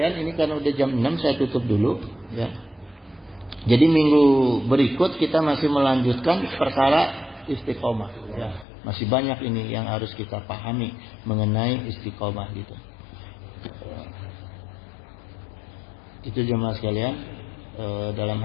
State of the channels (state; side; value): drops out; right; at 8.7 s